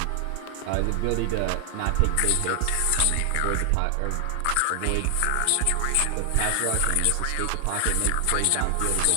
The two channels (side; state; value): both; different; correlation 0.00